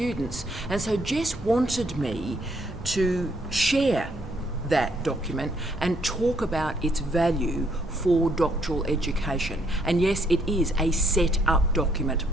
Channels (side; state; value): both; normal; correlation 0.70